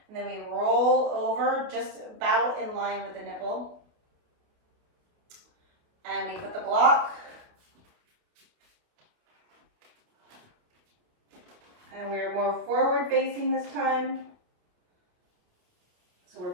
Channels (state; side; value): late; left; 28 ms